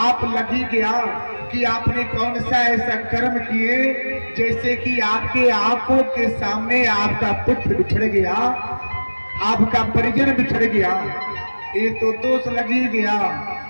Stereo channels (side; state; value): both; inverted; correlation -1.00